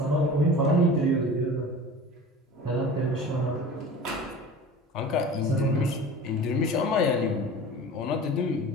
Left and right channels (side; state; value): both; normal; correlation 0.38